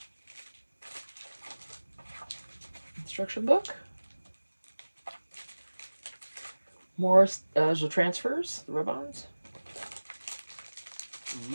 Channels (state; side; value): inverted; both; correlation -1.00